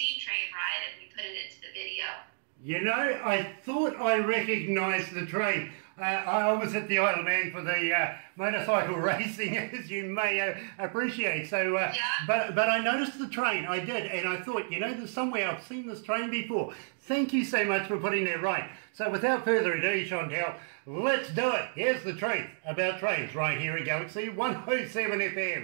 train ride, and we put it into the video. You know, I thought I recognised the train. I was at the Isle of Man for the motorcycle racing, as you may appreciate. So, but I noticed the train. I did, and I thought, you know, there's somewhere I've seen this train before. Thank you so much for putting that right. So, without further ado, Shantell, let's do it. Here's the truth about trains right here at Galaxy 107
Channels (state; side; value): silent; left; digital silence